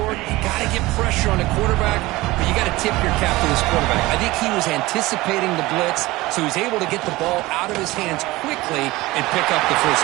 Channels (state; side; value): quieter; left; 19.7 dB